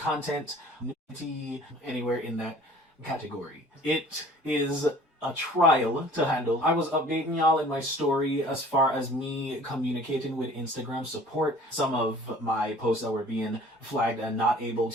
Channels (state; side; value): normal; both; correlation 0.49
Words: nudity, anywhere in that category, it is a trial to handle. I was updating y'all in my story as far as me communicating with Instagram support. Some of my posts that were being flagged and not able